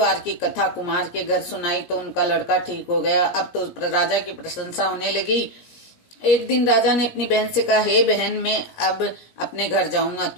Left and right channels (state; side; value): late; right; 17 ms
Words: की कथा कुमार के घर सुनाई तो उनका लड़का ठीक हो गया। अब तो राजा की प्रशंसा होने लगी। एक दिन राजा ने अपनी बहन से कहा, हे बहन, मैं अब अपने घर जाऊंगा,